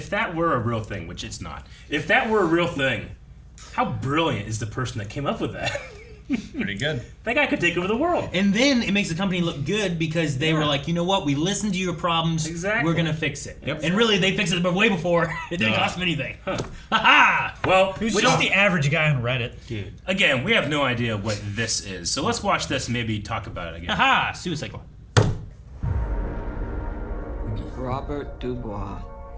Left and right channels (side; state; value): both; identical; correlation 1.00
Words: that were a real thing, which it's not, if that were a real thing, how brilliant is the person that came up with that? Pretty good. That guy could take over the world. And then it makes the company look good because they were like, you know what? We listened to your problems. Exactly. We're going to fix it. Yep. And really, they fixed it but way before. It didn't cost them anything. Ha-ha! Well, Who's just the average guy on Reddit? Dude. again, we have no idea what this is, so let's watch this and maybe talk about it again. Ha-ha! Suicide Squad. Robert Dubois.